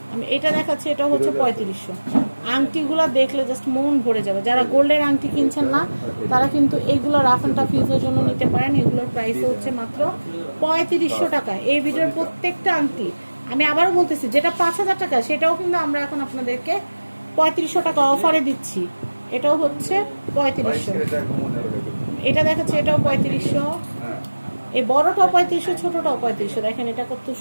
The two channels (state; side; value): inverted; both; correlation -1.00